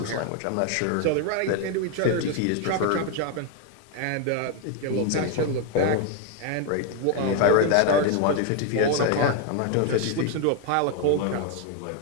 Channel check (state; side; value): different; both; correlation 0.01